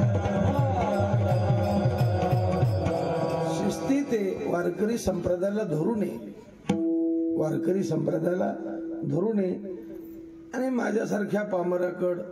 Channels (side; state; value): both; identical; correlation 1.00